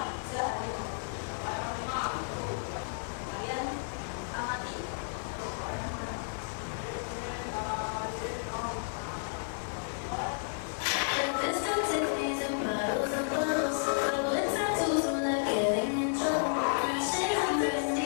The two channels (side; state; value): right; silent; digital silence